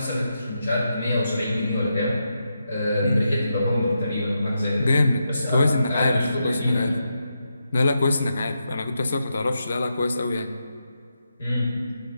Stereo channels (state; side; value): inverted; both; correlation -0.85